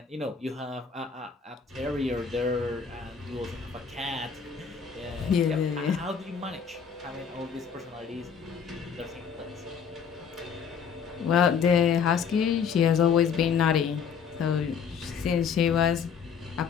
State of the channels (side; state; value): right; quieter; 6.6 dB